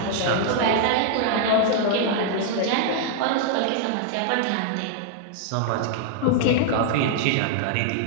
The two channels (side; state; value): both; different; correlation 0.00